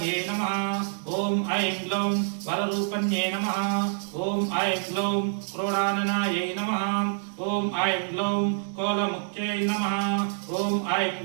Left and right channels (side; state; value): left; silent; digital silence